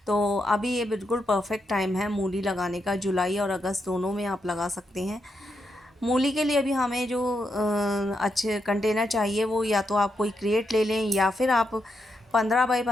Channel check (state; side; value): normal; both; correlation 0.82